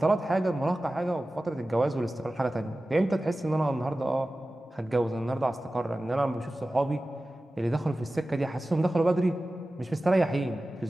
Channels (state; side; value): normal; both; correlation 0.96